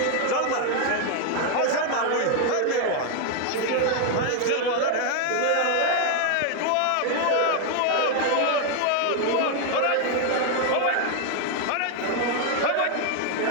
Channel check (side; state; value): both; different; correlation 0.00